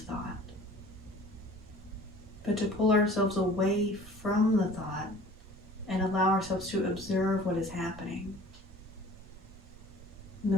thought, but to pull ourselves away from the thought and allow ourselves to observe what is happening. And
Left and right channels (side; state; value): right; noise; rumble, 18 dB below the sound